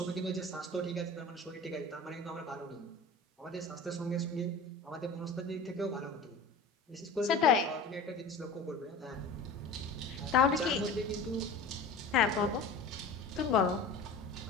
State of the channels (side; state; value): right; quieter; 3.3 dB